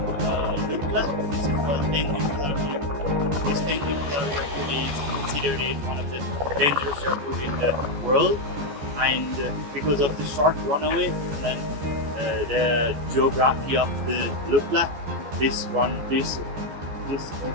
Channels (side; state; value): left; late; 14 ms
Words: Lukla. This is called Tengboche Airport. This Tengboche Airport is considered as one of the dangerous airports in the world, and because of the short runway and the geography of the Lukla, this airport